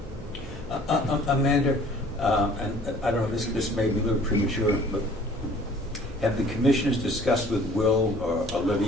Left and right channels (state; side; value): normal; both; correlation 0.52